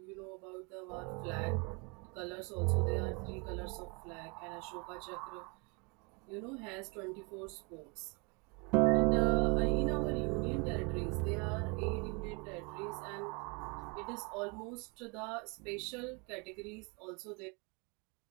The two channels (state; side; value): quieter; left; 31.3 dB